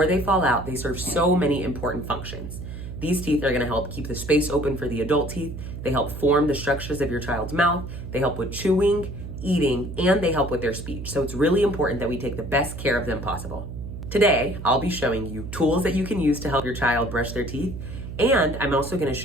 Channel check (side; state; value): right; noise; hum, 9 dB below the sound